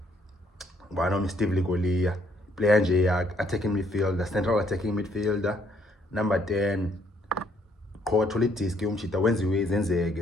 one Steve Ligolia, player nje attacking midfielder, central attacking midfielder, number 10. Qoka thola idiski umchita wenziwe izenzeke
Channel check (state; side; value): normal; both; correlation 0.68